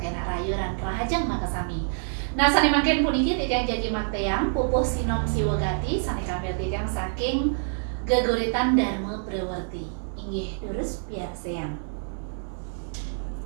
rayu ran rahajang makasami. Nah sane mangkin puniki tijang jagi makteang pupuh sinom siwagati sane kamil tijang saking geguritan Dharma Prawarti. Inggih durus biar seang.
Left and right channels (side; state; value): left; silent; digital silence